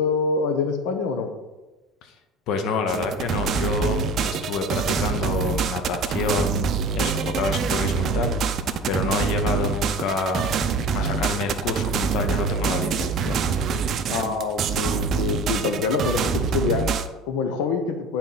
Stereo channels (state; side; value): normal; both; correlation 0.35